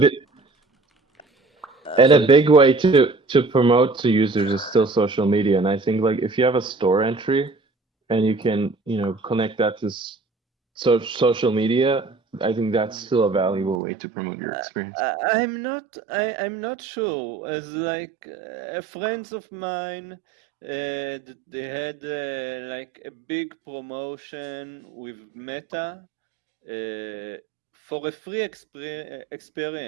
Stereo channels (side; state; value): left; drops out; at 13.8 s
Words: and a so big way to promote to users is still social media. And I think like if you have a store entry and you can connect that to social media, I think that's still a valuable way to promote your experience. I'm not sure. As like friends of mine, they had like a big promotion with Meta for a free